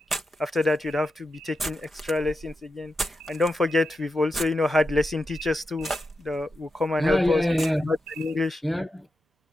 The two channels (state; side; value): normal; both; correlation 0.88